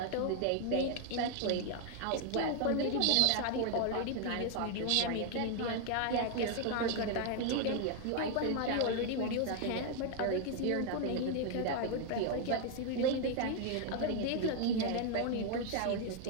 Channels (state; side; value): different; both; correlation 0.00